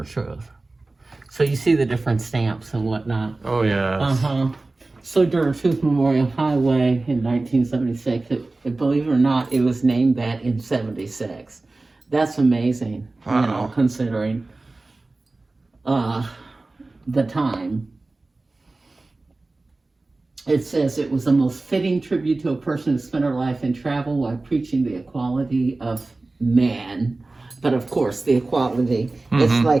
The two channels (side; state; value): left; quieter; 3.2 dB